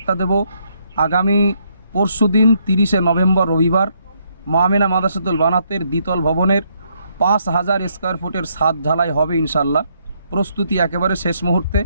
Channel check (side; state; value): both; inverted; correlation -0.73